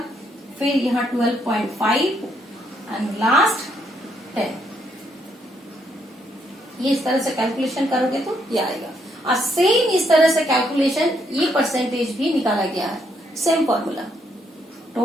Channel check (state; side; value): normal; both; correlation 0.74